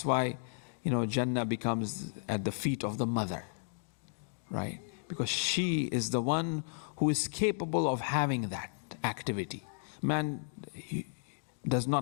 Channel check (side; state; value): right; silent; digital silence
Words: why, Jannah becomes at the feet of the mother, right? Because she is the one who is capable of having that activity. Man does